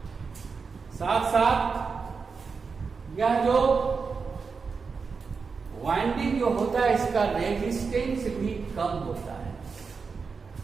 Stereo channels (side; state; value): left; quieter; 5.1 dB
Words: साथ साथ यह जो वाइंडिंग जो होता है इसका रेजिस्टेंस भी कम होता है